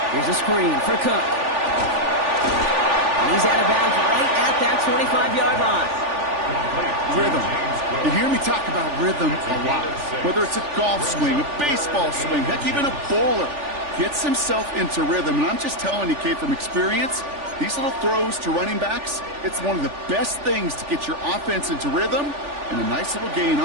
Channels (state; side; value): late; left; 3.4 ms